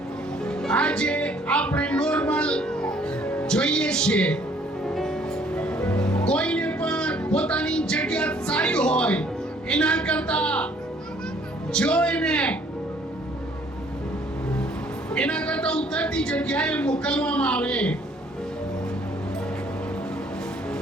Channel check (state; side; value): normal; both; correlation 0.60